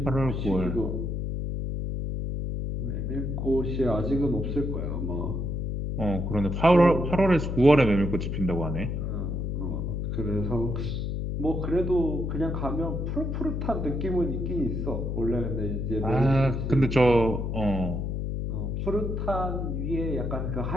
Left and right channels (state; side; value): noise; left; hum, 2 dB below the sound